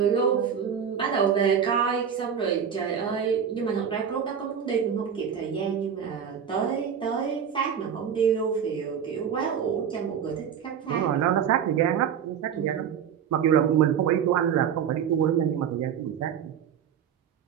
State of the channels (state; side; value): quieter; left; 8.0 dB